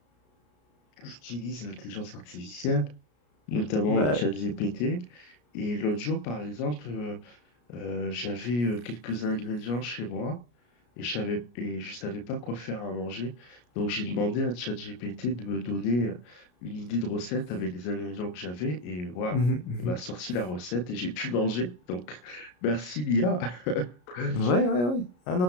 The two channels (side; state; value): right; late; 33 ms